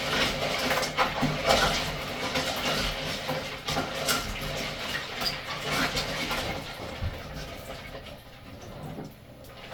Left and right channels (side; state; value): both; identical; correlation 1.00